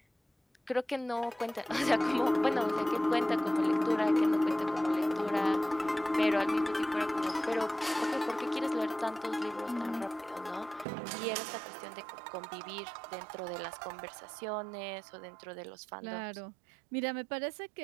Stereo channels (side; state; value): left; drops out; at 10.9 s